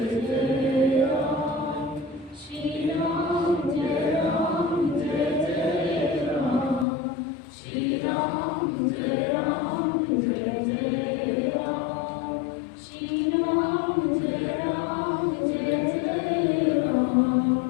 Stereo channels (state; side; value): drops out; right; at 6.9 s